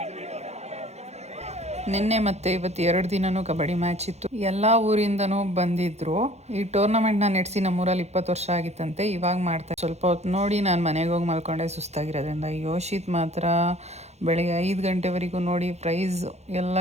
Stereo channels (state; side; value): late; left; 0.32 ms